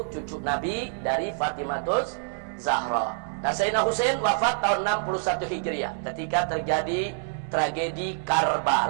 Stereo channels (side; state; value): left; silent; digital silence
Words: cucu Nabi dari Fatimatus Zahra. Nah, Sayyidina Husain wafat tahun 61 Hijriah ketika terjadi tragedi